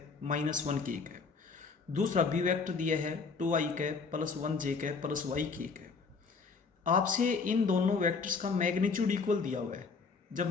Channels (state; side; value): quieter; right; 4.8 dB